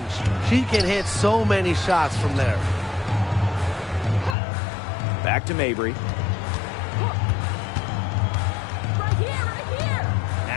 She can hit so many shots from there. Back to Mabry. Right here.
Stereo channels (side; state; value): right; drops out; at 4.4 s